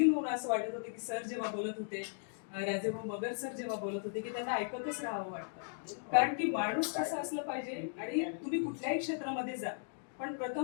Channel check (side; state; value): right; silent; digital silence